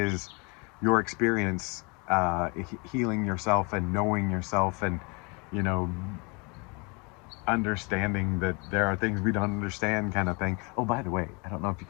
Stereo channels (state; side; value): quieter; right; 30.2 dB